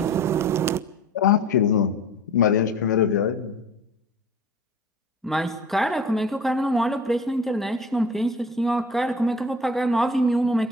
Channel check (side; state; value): both; normal; correlation 0.41